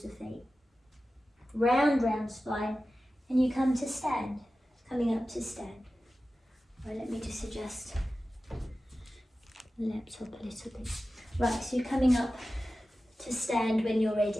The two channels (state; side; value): normal; both; correlation 0.94